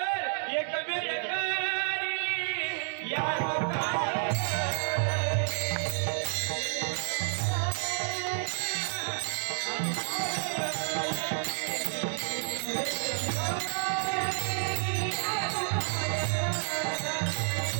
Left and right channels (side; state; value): left; silent; 58 dB below the other